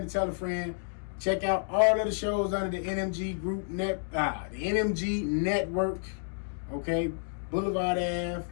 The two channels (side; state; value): right; silent; digital silence